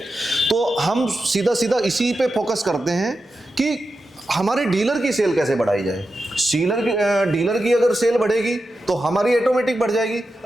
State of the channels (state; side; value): normal; both; correlation 0.90